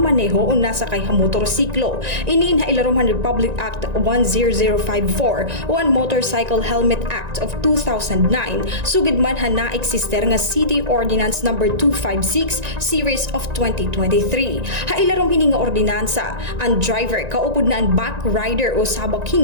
o nasa kay ha motorsiklo. Iniin ha ilaruman Republic Act 10054 o ang Motorcycle Helmet Act of 2009 sugid man ha na-eksister nga City Ordinance number 256 series of 2023. Ha ilarom hini nga ordinansa, ang driver kaupod na ang back rider o sabak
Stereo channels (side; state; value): left; late; 1.9 ms